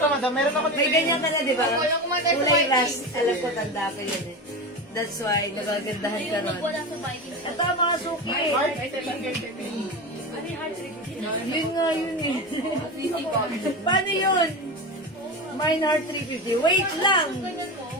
madam. Meron ako May ganyan ka na, di ba? Wala ko man tayo sa Kulay Vikings. rust. Alam ko, tanda ko yun eh. That's why, nagagandahan ka Yung ron. wala sa Vikings. Ito, mga suki. Heart, Ano yung heart rate? Yun nga, yun eh. Paano yun? Mine Heart 350. Wait lang. Ganyan mo.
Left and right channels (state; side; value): normal; both; correlation 0.23